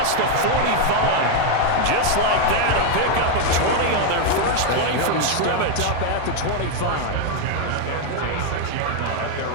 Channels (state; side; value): different; both; correlation 0.01